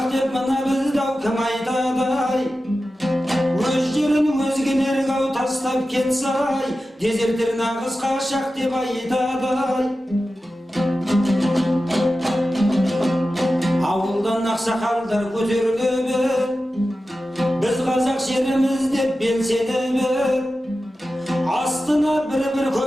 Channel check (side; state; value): both; normal; correlation 0.93